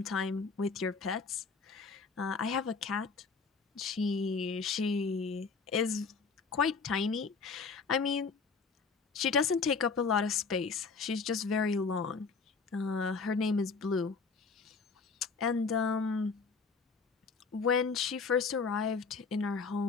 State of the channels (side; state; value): right; quieter; 4.9 dB